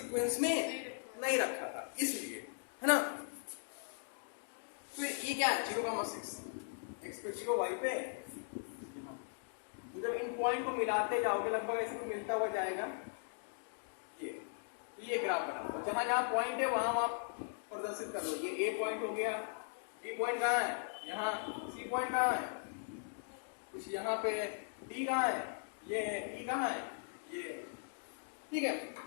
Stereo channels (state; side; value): silent; right; digital silence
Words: में नहीं रखा था इसलिए, है ना? फिर ई क्या है? 0, 6, x पे 0, y पे यहाँ। तो जब इन पॉइंट को मिलाते जाओगे लगभग ऐसे मिलता हुआ जाएगा ये। तो ये ग्राफ बनाओ और जहां जहां पॉइंट है वहां आप प्रदर्शित कर दो। ये ए पॉइंट हो गया, बी पॉइंट कहाँ है? यहाँ। सी पॉइंट कहाँ है? कुछ यहाँ पे। डी कहाँ है? ये है। ई कहाँ है? ये। ठीक है,